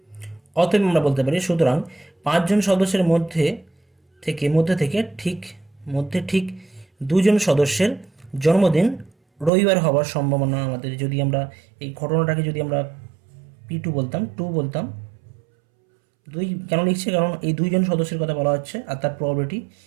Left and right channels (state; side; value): drops out; left; at 9.5 s